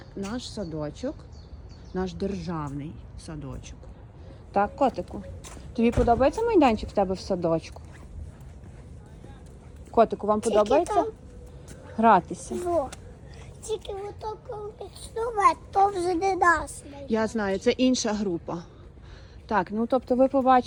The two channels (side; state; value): both; identical; correlation 1.00